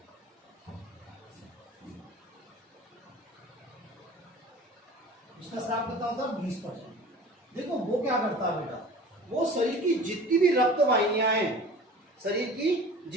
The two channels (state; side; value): normal; both; correlation 0.41